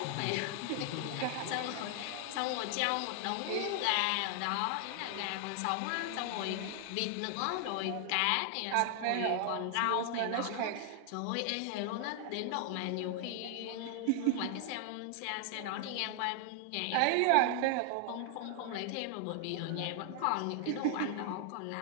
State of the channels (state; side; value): different; both; correlation 0.00